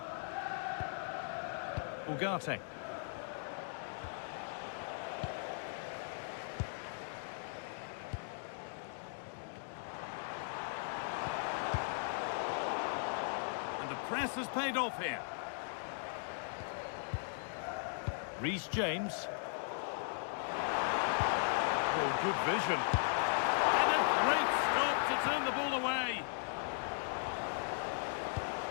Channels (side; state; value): right; silent; digital silence